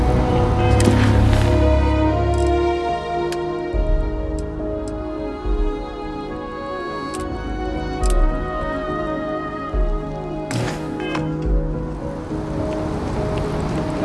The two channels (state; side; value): identical; both; correlation 1.00